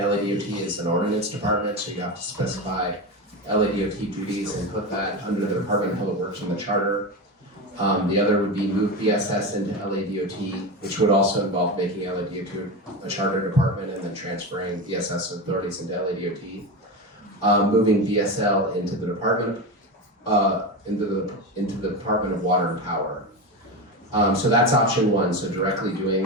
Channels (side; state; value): both; normal; correlation 0.20